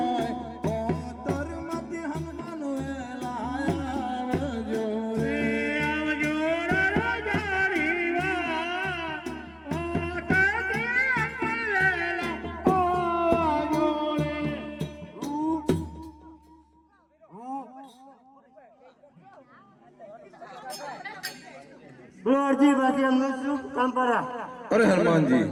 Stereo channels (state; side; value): identical; both; correlation 1.00